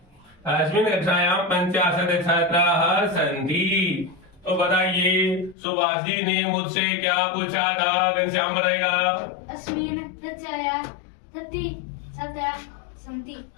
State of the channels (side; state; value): right; drops out; at 5.6 s